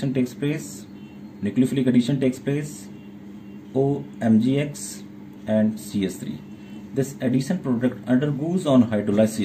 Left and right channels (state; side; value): identical; both; correlation 1.00